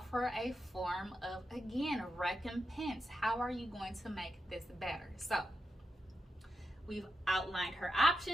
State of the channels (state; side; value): normal; both; correlation 0.87